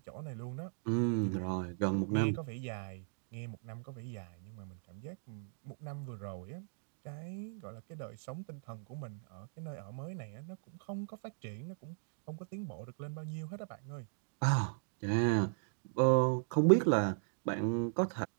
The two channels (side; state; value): left; silent; digital silence